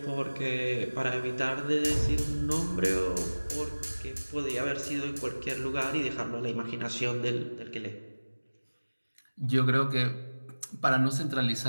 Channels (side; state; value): both; inverted; correlation -1.00